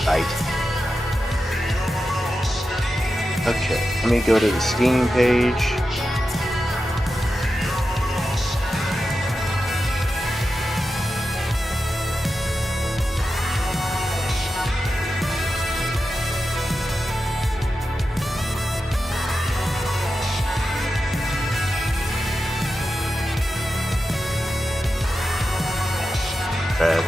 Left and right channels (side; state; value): both; normal; correlation 0.91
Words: light. Okay, let me go to the Steam page.